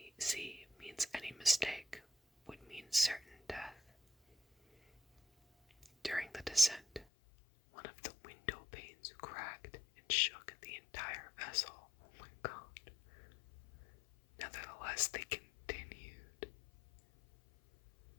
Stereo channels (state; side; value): drops out; right; at 7.1 s